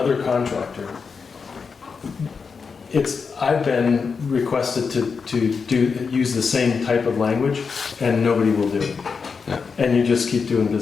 contractor. I've been requested to use the same type of language, and nobody will do it. Yeah. And you just keep doing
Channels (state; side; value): quieter; right; 5.4 dB